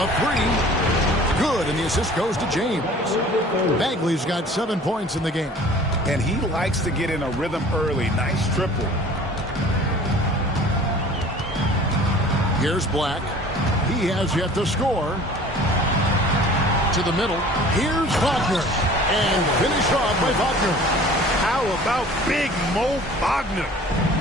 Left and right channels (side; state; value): both; normal; correlation 0.47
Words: 3. Good, and the assist goes to James. Bagley's got 7 points in the game. And he likes to get in a rhythm early. Nice triple. Here's Black. He has yet to score. To the middle. Here's Wagner. And finished off by Wagner. How about Big Mo Wagner?